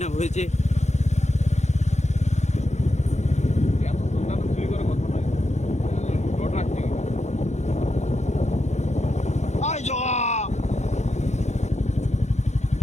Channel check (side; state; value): right; late; 0.33 ms